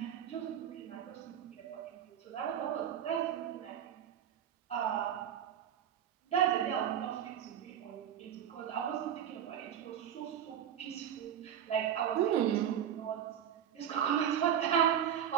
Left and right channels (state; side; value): quieter; left; 9.5 dB